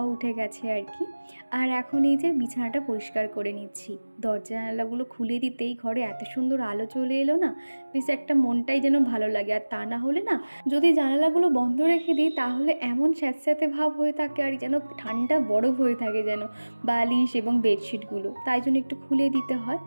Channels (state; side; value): inverted; both; correlation -1.00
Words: উঠে গেছে আর কি। আর এখন এই যে বিছানাটা পরিষ্কার করে নিচ্ছি। দরজা জানালাগুলো খুলে দিতেই ঘরে এত সুন্দর আলো চলে এলো না, বেশ একটা মনটাই যেন ভালো লাগে। আর তা না হলে না, যদি জানালাগুলো বন্ধ রেখে দিই তাহলে এমন স্যাঁতস্যাঁতে ভাব হয়ে থাকে আর যেন ঠান্ডা বরফ হয়ে থাকে যেন বালিশ এবং বেডশিটগুলো, তাই জন্য একটু খুলে দিতে হয়।